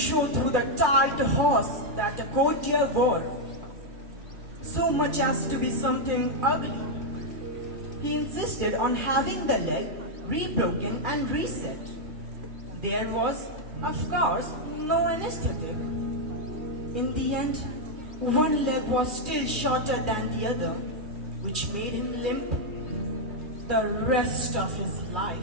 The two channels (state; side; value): late; left; 2.4 ms